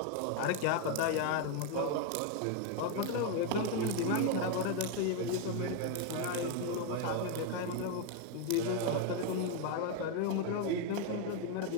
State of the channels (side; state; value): both; different; correlation 0.01